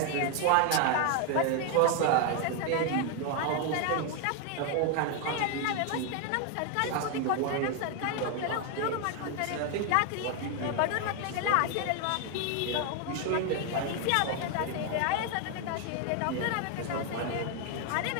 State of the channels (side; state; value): both; different; correlation 0.01